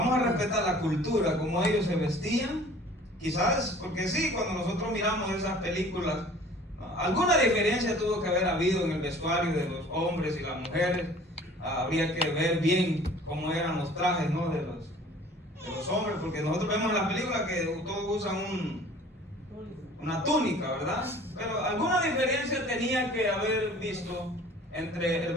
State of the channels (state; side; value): normal; both; correlation 0.49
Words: a respetar la cultura, como ellos se vestían, quizás, porque sí, cuando nosotros miramos esas películas, alguna diferencia tuvo que haber habido en el vestuario de los hombres y las mujeres. Habría que ver bien cómo eran los trajes, ¿no? de los hombres, porque nosotros vemos en la película que todos usan una túnica, ¿verdad? Pero alguna diferencia tenía que haber visto entre el